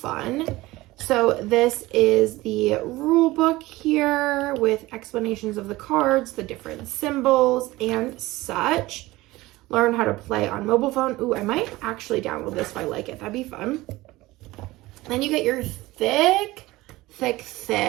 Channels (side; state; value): left; quieter; 19.0 dB